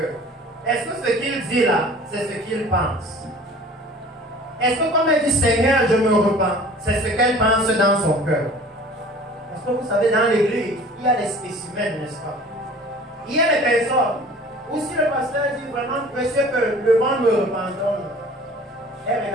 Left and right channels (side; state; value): both; normal; correlation 0.46